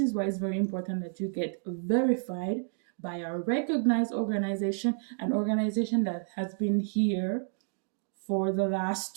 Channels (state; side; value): silent; left; digital silence